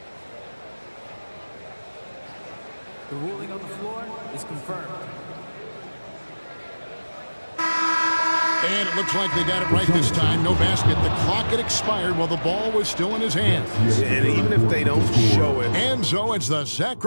The ruling on the floor is confirmed. And it looks like they got it right this time. No basket. The clock had expired while the ball was still in his hands. And even if they don't show it. And so it's the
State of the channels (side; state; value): both; inverted; correlation -1.00